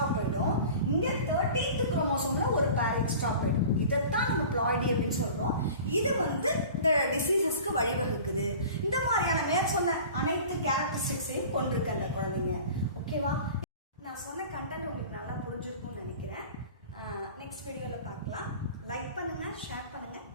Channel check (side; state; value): both; inverted; correlation -0.41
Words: போயிடும், இங்க 13th குரோமோசோம்ல ஒரு பேர் எக்ஸ்ட்ரா போயிடும். இதைத்தான் நம்ம பிளாய்டி அப்படின்னு சொல்றோம். இது வந்து இந்த டிசீசஸ்க்கு வழிவகுக்குது. இந்த மாதிரியான மேற்சொன்ன அனைத்து கேரக்டரிஸ்டிக்ஸையும் கொண்டிருக்கு அந்த குழந்தைங்க. ஓகேவா? நான் சொன்ன கண்டென்ட் உங்களுக்கு நல்லா புரிஞ்சிருக்கும்னு நினைக்கிறேன். நெக்ஸ்ட் வீடியோவில் பார்க்கலாம். லைக் பண்ணுங்க, ஷேர் பண்ணுங்க,